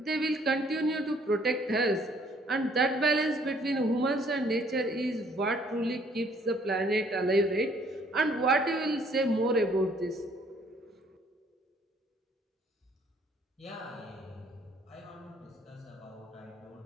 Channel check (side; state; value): both; normal; correlation 0.63